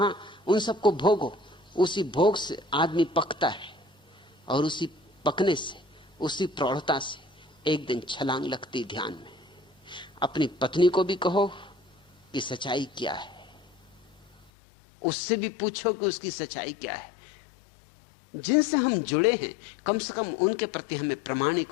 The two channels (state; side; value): drops out; right; at 14.5 s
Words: उन सबको भोगो। उसी भोग से आदमी पकता है और उसी पकने से, उसी प्रौढ़ता से एक दिन छलांग लगती ध्यान में। अपनी पत्नी को भी कहो कि सच्चाई क्या है, उससे भी पूछो कि उसकी सच्चाई क्या है। जिनसे हम जुड़े हैं कम से कम उनके प्रति हमें प्रामाणिक